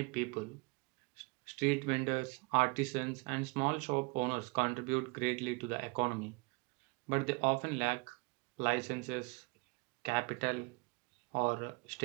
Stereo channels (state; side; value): quieter; left; 28.7 dB